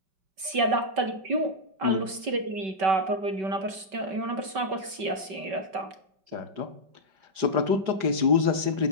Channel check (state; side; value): late; left; 5.3 ms